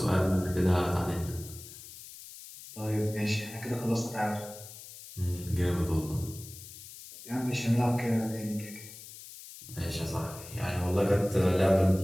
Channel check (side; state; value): left; noise; hiss, 15 dB below the sound